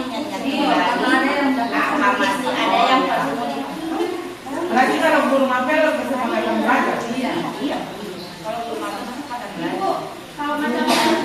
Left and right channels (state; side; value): identical; both; correlation 1.00